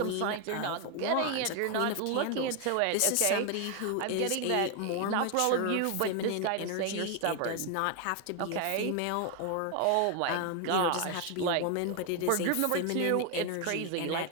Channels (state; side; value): different; both; correlation 0.01